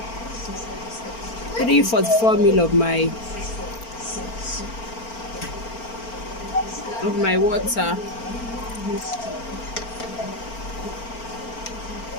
344 ml of my water.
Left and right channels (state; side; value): late; right; 4.4 ms